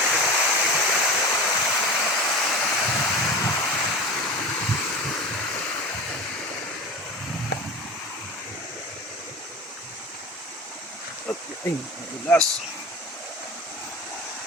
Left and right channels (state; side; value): normal; both; correlation 0.32